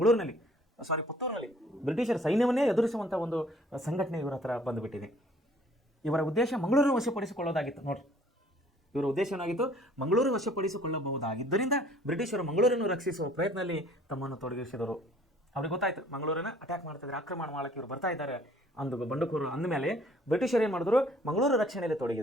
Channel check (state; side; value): normal; both; correlation 0.56